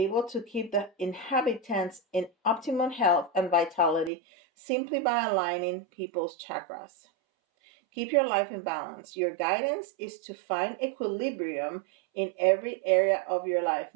to keep the inhabitants in optimum health and vitality simply by aligning people's chakras. Keep your life in balance. Your guidance is to find equilibrium in every area of your life.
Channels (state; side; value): drops out; left; at 4.1 s